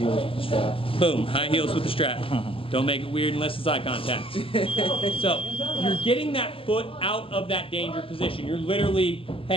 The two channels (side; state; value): right; late; 0.26 ms